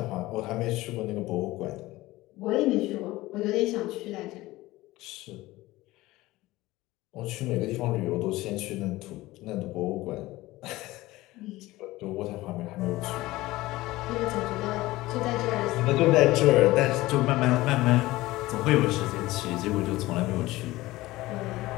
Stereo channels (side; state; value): right; quieter; 18.4 dB